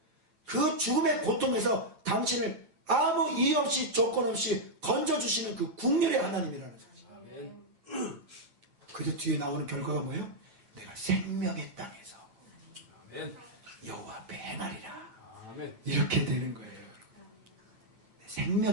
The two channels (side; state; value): left; late; 9.1 ms